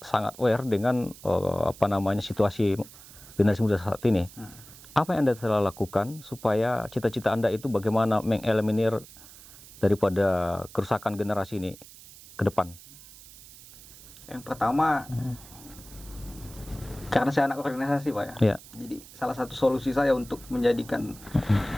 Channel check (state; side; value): noise; right; hiss, 19 dB below the sound